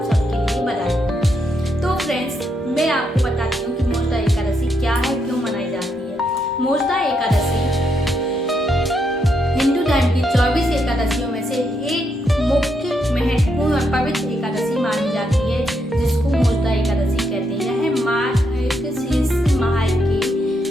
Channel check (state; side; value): normal; both; correlation 0.79